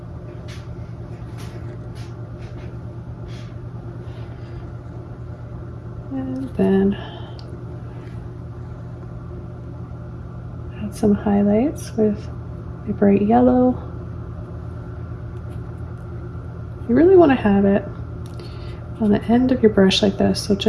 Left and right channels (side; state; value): both; identical; correlation 1.00